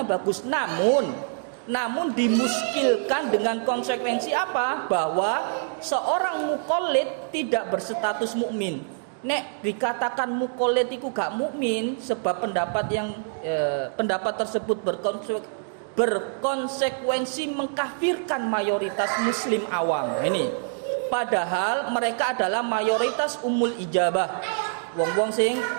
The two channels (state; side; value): silent; left; digital silence